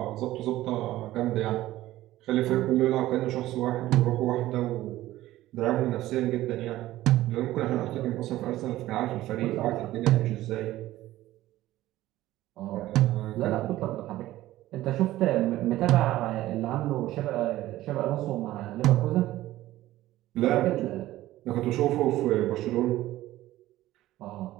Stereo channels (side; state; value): left; quieter; 15.5 dB